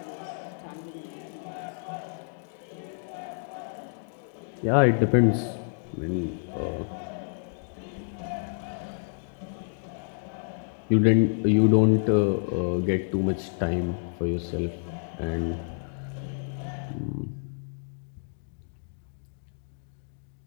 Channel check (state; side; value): silent; right; digital silence